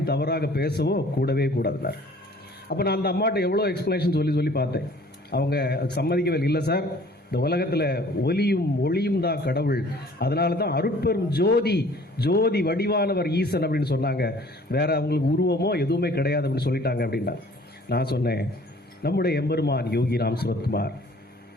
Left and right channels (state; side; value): normal; both; correlation 0.53